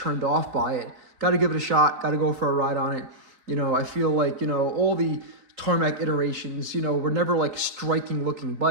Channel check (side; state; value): left; late; 3.9 ms